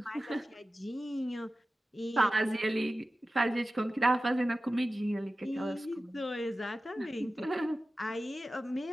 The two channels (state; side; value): normal; both; correlation 0.95